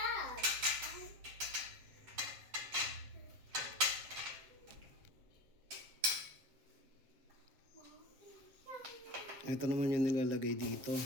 Ito naman yung nilalagay dito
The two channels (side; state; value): left; late; 7.7 ms